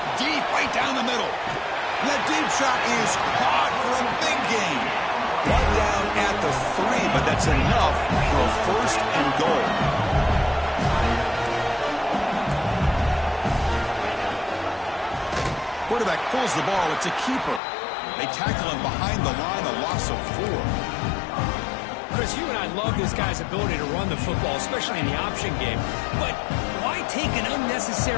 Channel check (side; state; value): right; drops out; at 17.6 s